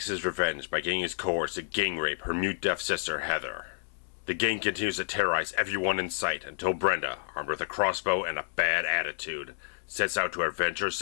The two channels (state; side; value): silent; right; 58 dB below the other